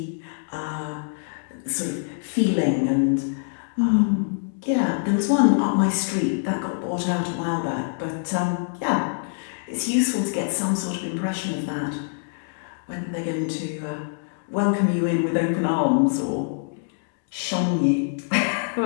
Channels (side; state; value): right; silent; digital silence